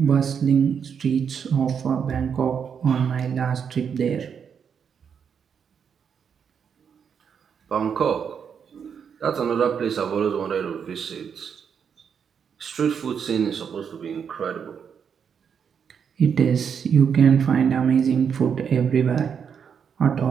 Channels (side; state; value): left; quieter; 7.1 dB